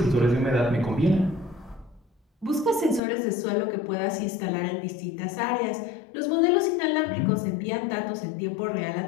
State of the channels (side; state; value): right; drops out; at 3.0 s